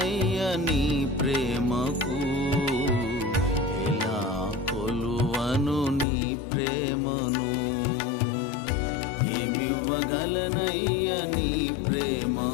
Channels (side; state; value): right; drops out; at 6.1 s